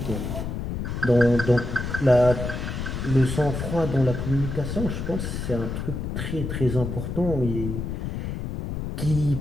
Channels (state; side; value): noise; left; rumble, 4 dB below the sound